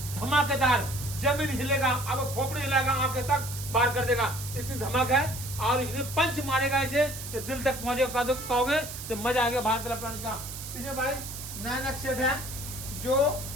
धमाकेदार, जमीन हिलेगा, अब खोपड़ी हिलेगा, आंखें तक बाहर कर देगा, इतनी धमाक है। और इसमें पंच मारेगा ऐसे कि दिल तक पहुंचेगा, कहोगे तो मजा आ गया भारत इलेक्ट्रॉनिक्स का। इसे भाई नया नया सेट है जो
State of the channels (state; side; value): noise; right; hiss, 10 dB below the sound